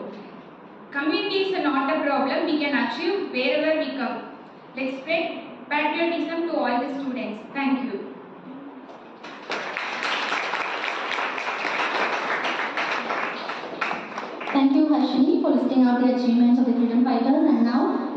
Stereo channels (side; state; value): both; identical; correlation 1.00